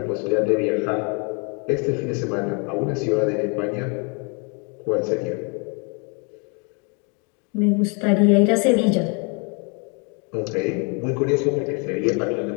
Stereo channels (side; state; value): right; quieter; 34.8 dB